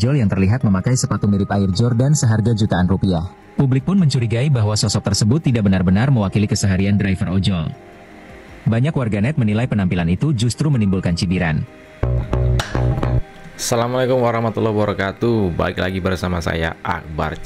yang terlihat memakai sepatu mirip Air Jordan seharga jutaan rupiah. Publik pun mencurigai bahwa sosok tersebut tidak benar-benar mewakili keseharian driver ojol. Banyak warganet menilai penampilan itu justru menimbulkan cibiran. Assalamualaikum warahmatullahi wabarakatuh. Balik lagi bersama saya Akbar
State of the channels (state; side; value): identical; both; correlation 1.00